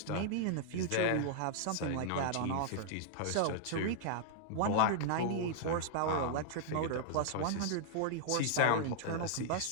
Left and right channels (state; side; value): different; both; correlation -0.01